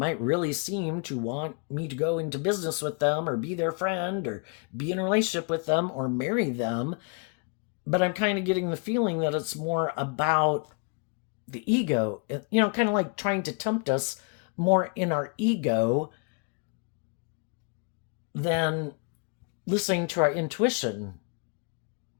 really seem to want me to go into business with them, or be their friend, or be in a relationship with them, or marry them. But I'm kind of getting the feeling that it's more about the ego, kind of like trying to tempt us more in our ego than listening to our intuition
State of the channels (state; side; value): quieter; right; 34.7 dB